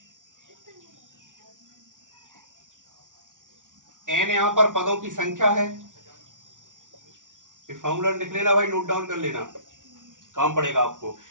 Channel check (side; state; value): left; late; 0.87 ms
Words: एन यहां पर पदों की संख्या है। फॉर्मूला लिख लेना भाई, नोट डाउन कर लेना, काम पड़ेगा आपको।